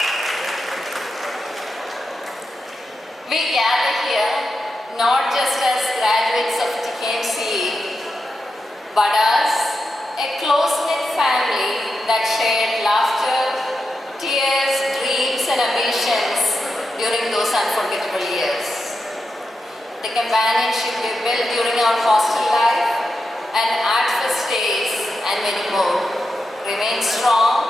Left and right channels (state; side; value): normal; both; correlation 0.88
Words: not just as graduates of TKMCE, but as a close-knit family that shared laughter, tears, dreams and ambitions during those unforgettable years. The companionship we built during our hostel life and art fest days and many more remains